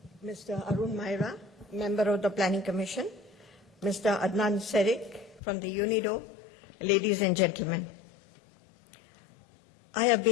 Mr. Arun Maira, member of the Planning Commission, Mr. Adnan Serik from the UNIDO, ladies and gentlemen. I have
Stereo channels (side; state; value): right; drops out; at 5.4 s